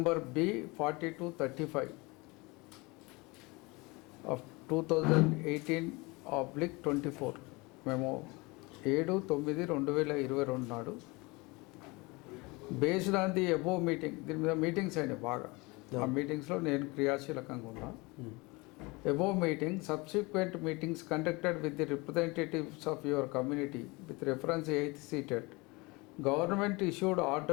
B42/35 of 2018/24 మేము 7/9/2022 నాడు based on the above meeting. దీని మీద మీటింగ్స్ అయినాయి బాగా. ఆ మీటింగ్స్లో నేను క్రియాశీలకంగా ఉన్నా. Above meeting, subsequent meetings conducted with the representatives of your community with reference 8th seated, government issued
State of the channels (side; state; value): right; quieter; 25.2 dB